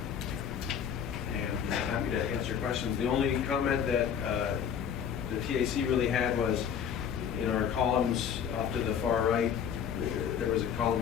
And I'm happy to answer questions. The only comment that the TAC really had was in our columns off to the far right, there was a column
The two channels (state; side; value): quieter; right; 8.1 dB